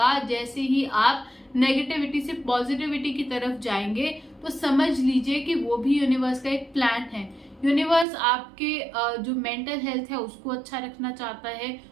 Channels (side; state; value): left; drops out; at 8.1 s